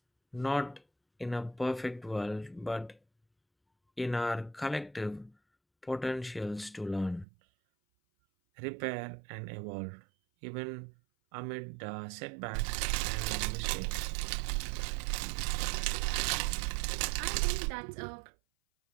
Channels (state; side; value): drops out; left; at 7.2 s